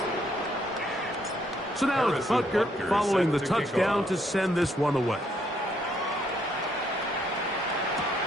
So now it's Butker following the touchdown to send this one away.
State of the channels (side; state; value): both; normal; correlation 0.71